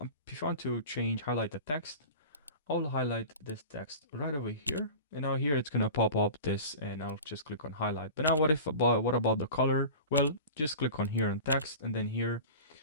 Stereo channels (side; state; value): both; inverted; correlation -0.35